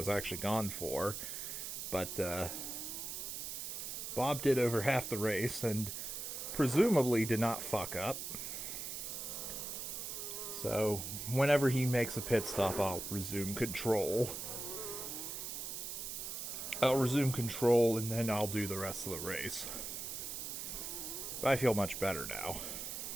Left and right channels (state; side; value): noise; right; hiss, 5 dB below the sound